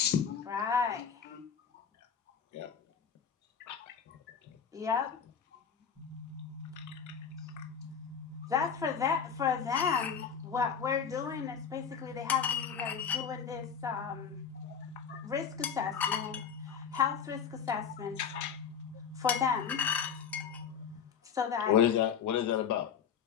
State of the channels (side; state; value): right; quieter; 7.2 dB